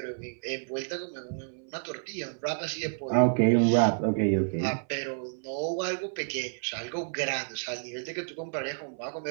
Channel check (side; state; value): left; silent; 58 dB below the other